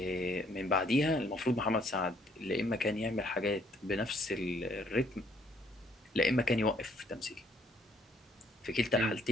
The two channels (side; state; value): both; normal; correlation 0.66